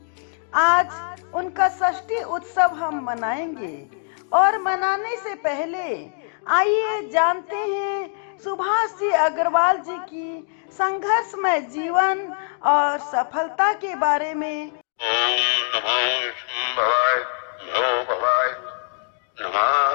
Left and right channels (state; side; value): silent; right; digital silence